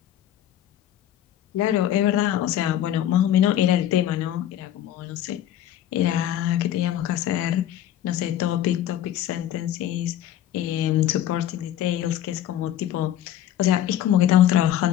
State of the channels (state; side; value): quieter; right; 11.7 dB